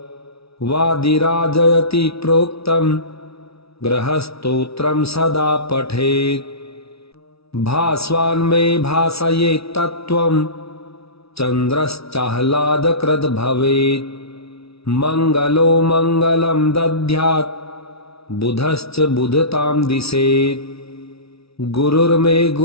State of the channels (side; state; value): right; late; 0.77 ms